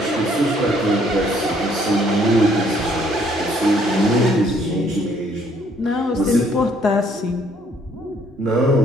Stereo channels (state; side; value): normal; both; correlation 0.64